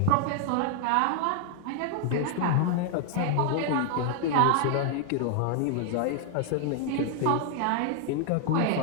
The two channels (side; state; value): both; different; correlation 0.00